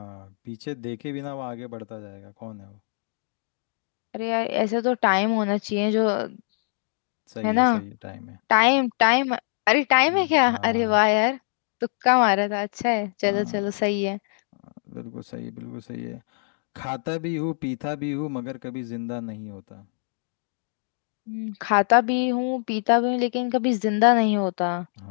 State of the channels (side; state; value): right; silent; digital silence